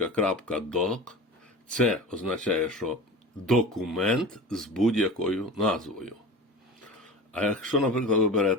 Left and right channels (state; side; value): normal; both; correlation 0.34